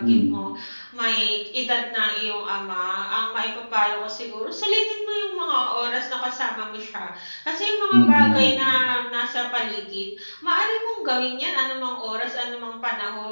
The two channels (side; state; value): both; inverted; correlation -1.00